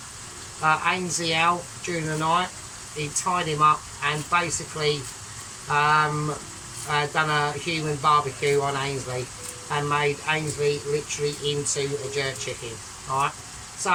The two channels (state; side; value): identical; both; correlation 1.00